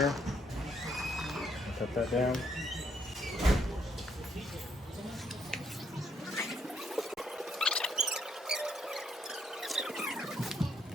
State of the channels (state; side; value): normal; both; correlation 0.72